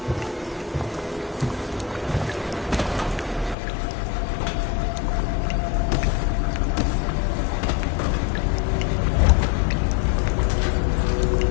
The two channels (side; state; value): right; drops out; at 3.6 s